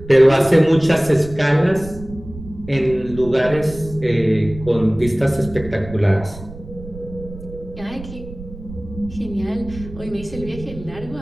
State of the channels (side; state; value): right; noise; rumble, 14 dB below the sound